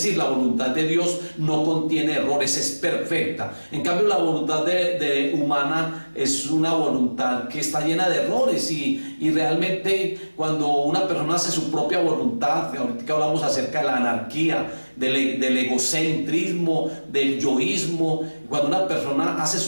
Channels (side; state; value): both; inverted; correlation -1.00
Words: la voluntad de Dios no contiene errores, es perfecta. En cambio, la voluntad humana es una voluntad que está llena de errores y realmente cuando una persona hace su propia voluntad, ahorita que hablamos acerca de la anarquía, del egocentrismo, del yoísmo. Cuando una persona hace